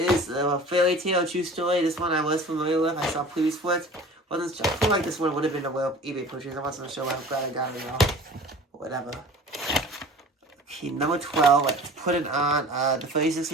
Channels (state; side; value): normal; both; correlation 0.43